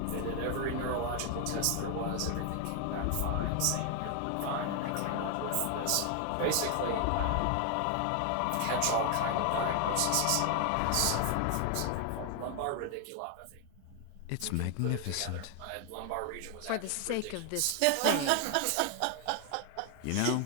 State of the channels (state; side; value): different; both; correlation 0.00